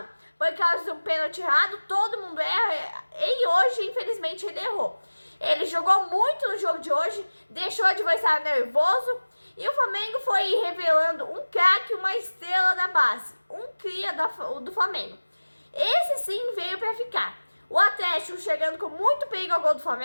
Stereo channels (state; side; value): inverted; both; correlation -1.00